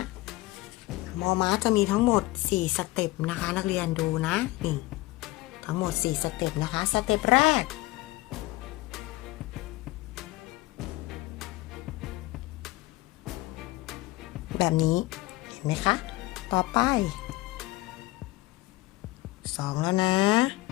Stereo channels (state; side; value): quieter; right; 19.6 dB